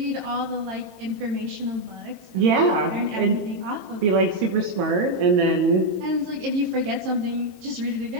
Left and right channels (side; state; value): left; late; 22 ms